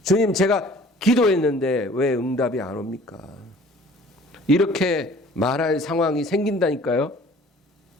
주님, 제가 기도했는데 왜 응답이 안 옵니까? 이렇게 말할 상황이 생긴다니까요.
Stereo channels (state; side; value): normal; both; correlation 0.51